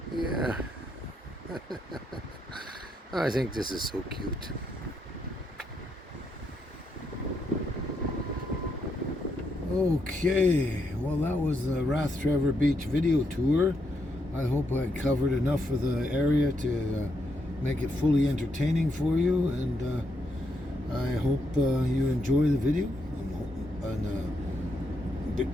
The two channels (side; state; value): both; normal; correlation 0.79